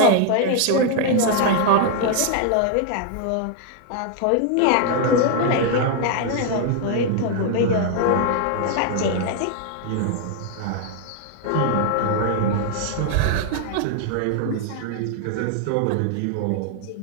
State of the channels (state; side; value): different; both; correlation 0.00